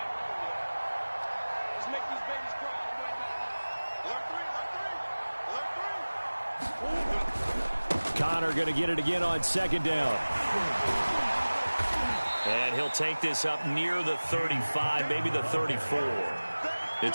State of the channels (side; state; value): both; inverted; correlation -1.00